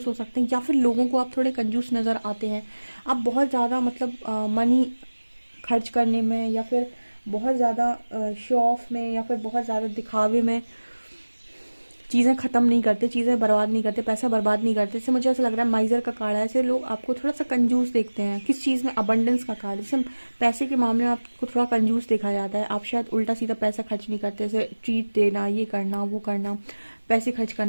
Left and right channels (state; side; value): inverted; both; correlation -1.00